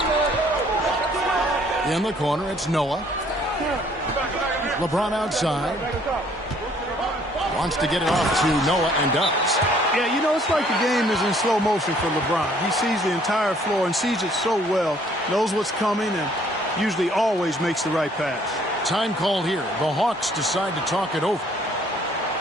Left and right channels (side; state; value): both; normal; correlation 0.61